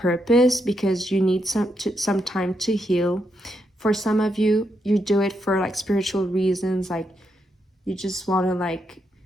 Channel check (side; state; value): both; normal; correlation 0.81